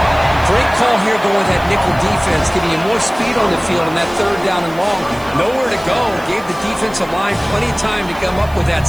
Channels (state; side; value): noise; right; hiss, 22 dB below the sound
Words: Great call here going with that nickel defense, giving you more speed on the field on that third down and long. Nowhere to go. Gave the defensive line plenty of time to come up with that